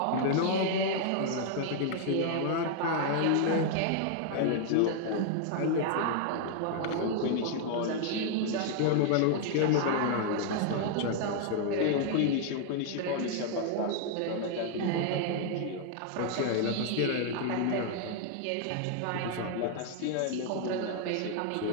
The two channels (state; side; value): different; both; correlation 0.00